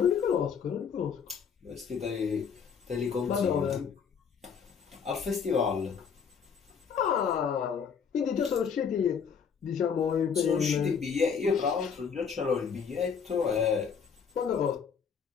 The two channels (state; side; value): quieter; right; 6.7 dB